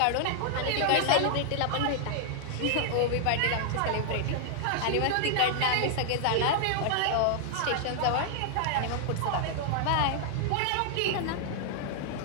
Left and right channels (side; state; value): both; different; correlation -0.01